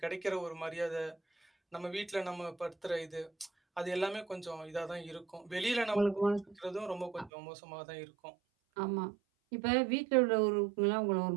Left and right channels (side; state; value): left; drops out; at 7.3 s